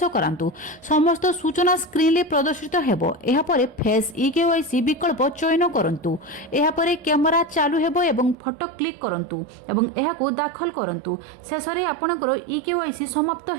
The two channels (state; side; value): drops out; left; at 8.3 s